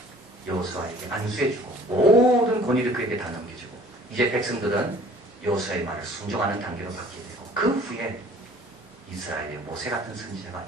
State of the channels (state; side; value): normal; both; correlation 0.53